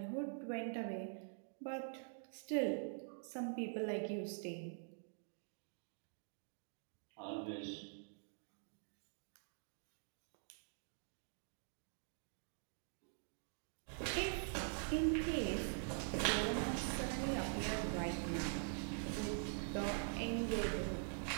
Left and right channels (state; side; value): silent; left; digital silence